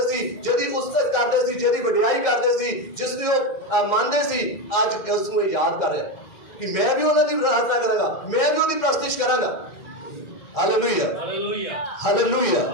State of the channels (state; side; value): late; right; 1.6 ms